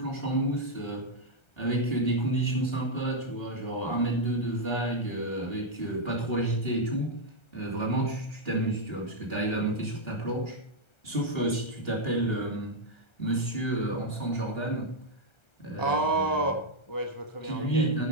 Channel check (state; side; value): late; right; 1.3 ms